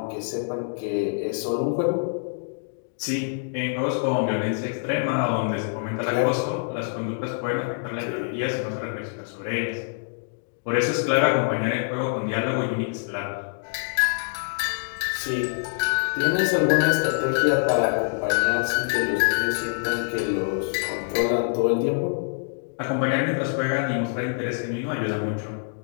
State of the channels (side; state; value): right; silent; digital silence